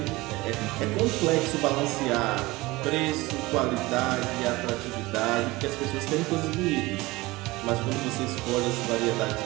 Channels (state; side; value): quieter; left; 20.9 dB